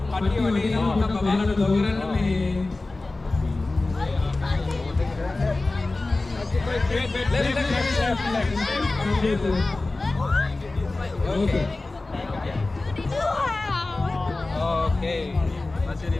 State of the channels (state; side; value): quieter; right; 3.2 dB